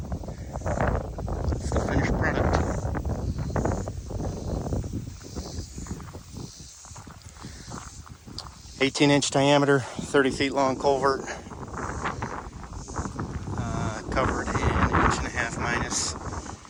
That's the finished product. "18-inch diameter, 30 feet long culvert, covered in 1.5" minus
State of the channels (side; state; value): both; identical; correlation 1.00